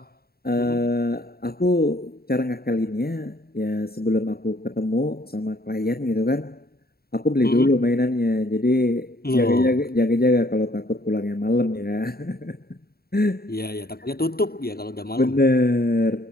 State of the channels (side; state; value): right; late; 0.45 ms